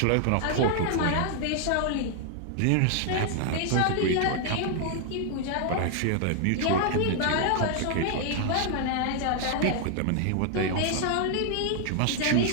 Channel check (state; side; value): different; both; correlation 0.00